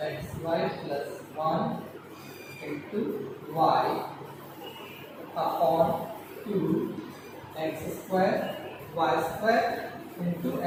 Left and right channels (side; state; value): both; identical; correlation 1.00